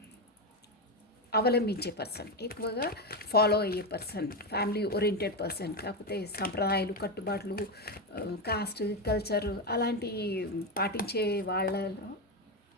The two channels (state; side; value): normal; both; correlation 0.11